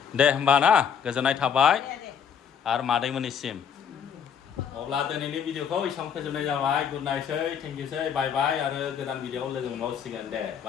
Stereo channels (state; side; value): quieter; right; 7.7 dB